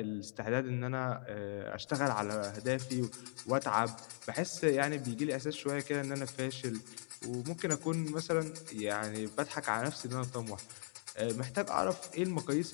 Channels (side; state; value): right; silent; 52 dB below the other